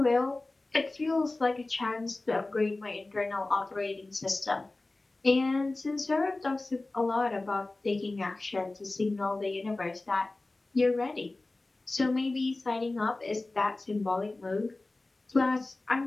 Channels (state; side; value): quieter; right; 3.0 dB